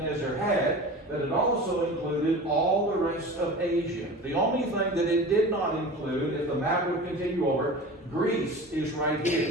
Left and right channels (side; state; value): both; normal; correlation 0.35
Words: had, but it also included all the rest of Asia. The only thing that it did not include, if the map would continue over, Greece is right